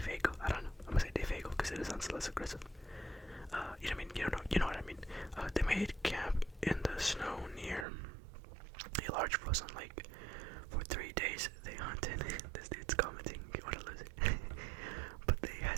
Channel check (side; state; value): left; drops out; at 7.9 s